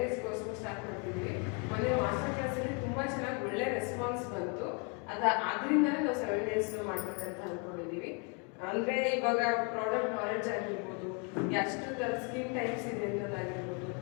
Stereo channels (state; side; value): quieter; right; 35.7 dB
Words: days ಕೋರ್ಸ್ ಸ್ಟಾರ್ಟ್ ಮಾಡ್ತಿದ್ದೀವಿ. ಮೊನ್ನೆ ಮಾಸ್ಟರ್ ಕ್ಲಾಸಲ್ಲಿ ತುಂಬ ಚೆನ್ನಾಗಿ ಒಳ್ಳೆ ರೆಸ್ಪಾನ್ಸ್ ಬಂತು. ಅದರಿಂದಲೇ ನಾವು 7 days ಮಾಡ್ಬೇಕಂತ ಅಂದ್ಕೊಂಡಿದ್ದೀವಿ. ಅಂದರೆ ಇವಾಗ ಪ್ರಾಡಕ್ಟ್ ನಾಲೆಡ್ಜ್ ಆಗಿರ್ಬೋದು, ಎಷ್ಟು ಥರ ಸ್ಕಿನ್ ಟೈಪ್ಸ್ ಇದೆ ಅನ್ನೋದಾಗಿರ್ಬೋದು,